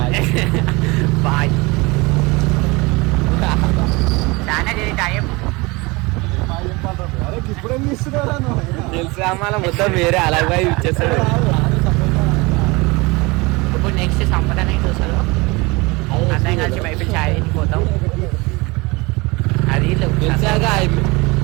బాయ్. చాలా టైం తెలుసు అమ్మాల మొత్తం వేరే అలాగే ఇచ్చేస్తాడు. ఇప్పుడు నెక్స్ట్ సంపదనే చూసారు, అందరం కలిసి మైబిల్ ఛాయ్ పోతాం. అది తెలిసాగా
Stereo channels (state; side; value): quieter; left; 24.8 dB